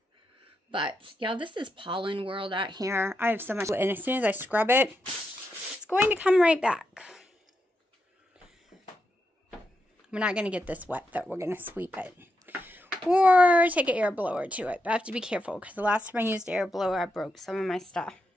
But, yeah, this is pollen world out here. I have so much, and as soon as I scrub it, it's going to come right back. We're not going to get this wet, though. We're going to sweep it. Or take an air blower to it. But I have to be careful, because the last time I used air blower, I broke some of my stuff.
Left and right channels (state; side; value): normal; both; correlation 0.84